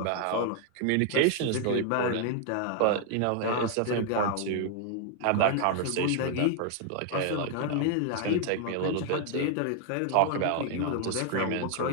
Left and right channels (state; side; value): different; both; correlation 0.00